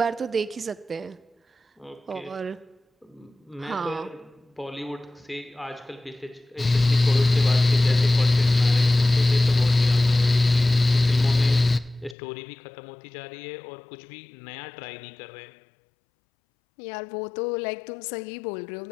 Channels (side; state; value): right; drops out; at 12.2 s